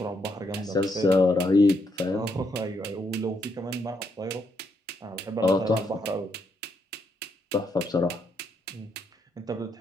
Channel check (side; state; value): both; normal; correlation 0.77